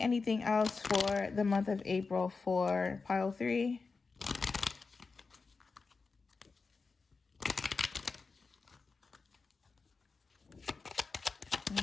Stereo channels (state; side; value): quieter; right; 4.4 dB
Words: anything else for the month of April for pile 3. Let